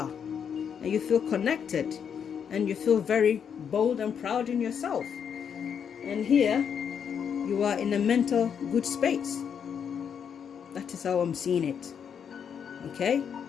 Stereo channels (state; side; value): quieter; right; 7.6 dB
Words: and you feel connected, and you feel very bold and proud in yourself. And here you are in a mental good space. That is how I'm seeing it. Okay,